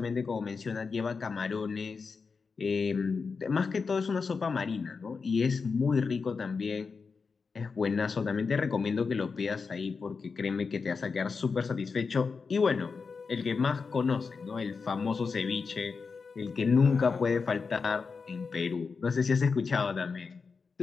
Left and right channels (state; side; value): quieter; right; 5.0 dB